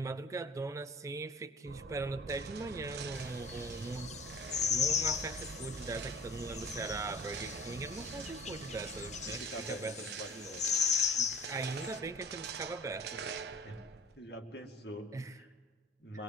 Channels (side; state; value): both; normal; correlation 0.45